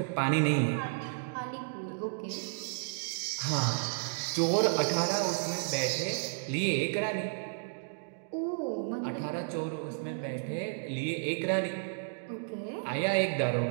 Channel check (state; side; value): silent; left; digital silence